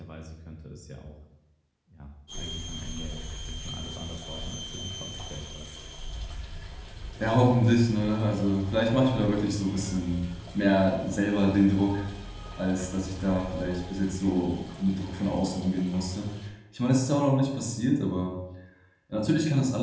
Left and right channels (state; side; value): identical; both; correlation 1.00